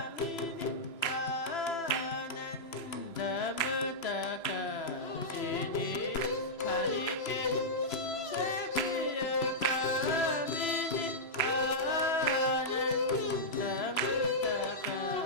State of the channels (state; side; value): late; right; 3.0 ms